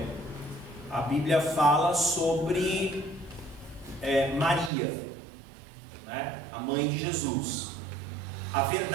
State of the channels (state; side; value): drops out; left; at 4.7 s